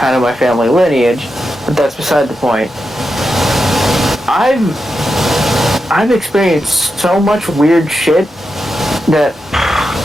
of my family lineage, but that's beside the point. I've experienced so much weird shit that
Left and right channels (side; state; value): both; normal; correlation 0.88